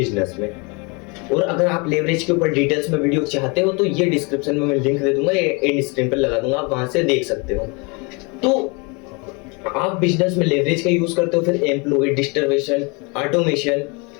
में। और अगर आप लेवरेज के ऊपर डिटेल्स में वीडियो चाहते हो तो ये डिस्क्रिप्शन में मैं लिंक दे दूंगा, एंड स्क्रीन पर लगा दूंगा, आप वहां से देख सकते हो। तो आप बिजनेस में लेवरेज का यूज करते हो, फिर एम्प्लॉय, डिस्ट्रीब्यूशन, ऑटोमेशन,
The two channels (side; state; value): right; quieter; 30.4 dB